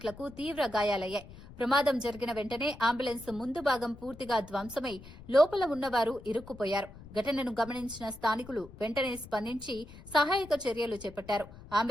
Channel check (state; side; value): noise; left; rumble, 18 dB below the sound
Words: తీవ్ర గాయాలయ్యాయి. ప్రమాదం జరిగిన వెంటనే అంబులెన్స్ ముందు భాగం పూర్తిగా ధ్వంసమై లోపల ఉన్నవారు ఇరుక్కుపోయారు. ఘటనను గమనించిన స్థానికులు వెంటనే స్పందించి సహాయక చర్యలు చేపట్టారు.